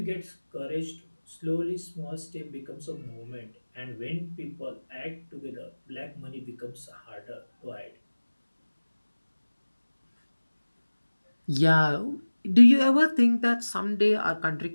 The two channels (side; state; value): both; inverted; correlation -1.00